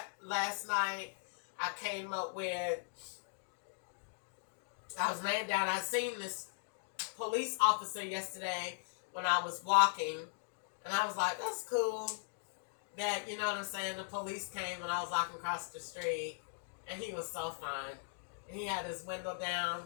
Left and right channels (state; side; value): silent; right; digital silence